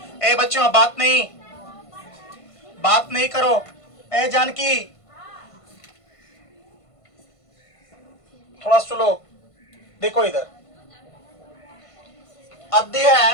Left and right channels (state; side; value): late; right; 1.5 ms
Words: ए बच्चों, बात नहीं करो। ए जानकी, थोड़ा सुनो, देखो इधर।